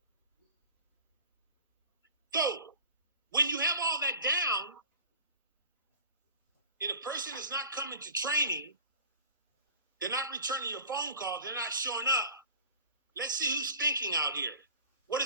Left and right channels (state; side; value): inverted; both; correlation -0.42